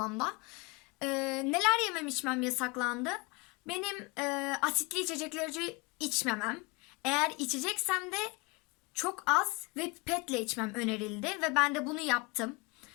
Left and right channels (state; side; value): quieter; right; 26.8 dB